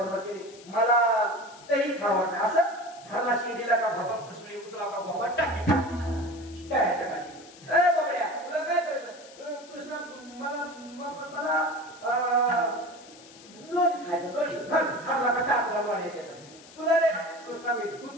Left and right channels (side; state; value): left; noise; hiss, 21 dB below the sound